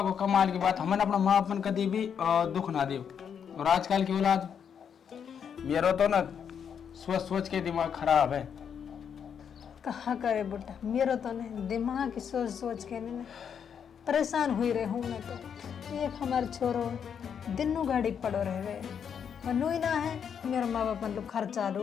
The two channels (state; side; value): quieter; right; 7.6 dB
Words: कमाल की बात, हमने अपना माँ अपन कदी भी दुख ना दे। और आजकल की औलाद, मेरा तो ना सोच सोच के दिमाग खराब है। कहा करे बुढ़ा, मेरा तो नहीं दिमाग की सोच सोच के नहीं परेशान हुई रहे हूँ मैं तो। एक हमारे छोरो दिनों गाड़ी पड़ो रह गए, मनु ही ना है, मेरे माँ बाप लोग खर्चा